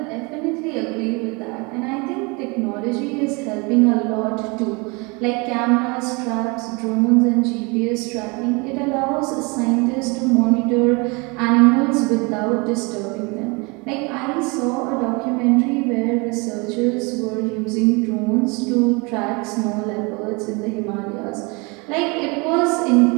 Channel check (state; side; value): quieter; left; 28.7 dB